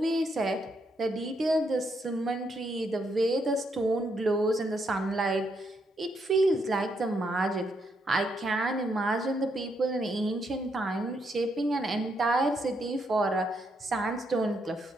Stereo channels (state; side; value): normal; both; correlation 0.77